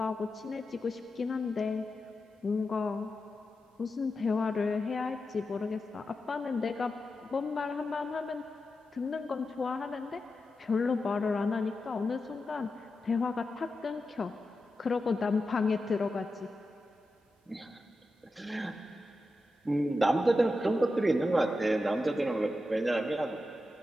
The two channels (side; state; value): both; normal; correlation 0.90